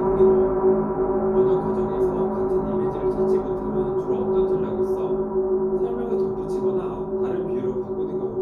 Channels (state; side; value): identical; both; correlation 1.00